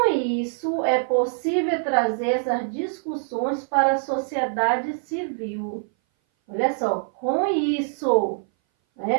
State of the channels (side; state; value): left; silent; 59 dB below the other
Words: isso é possível trazer essas discussões para a sociedade civil. Olha só, com isso,